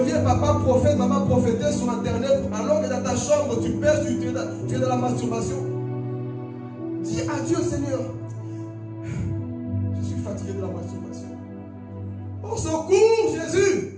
papa prophète, maman prophétesse sur internet, alors que dans ta chambre, tu pêches, tu es dans la masturbation. Dis à Dieu, Seigneur, je suis fatigué de la masturbation. Au secours, Jésus!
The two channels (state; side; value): identical; both; correlation 1.00